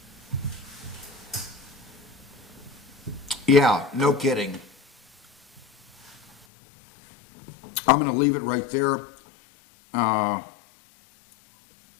Yeah, no kidding. I'm going to leave it right there.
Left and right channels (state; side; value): drops out; right; at 6.5 s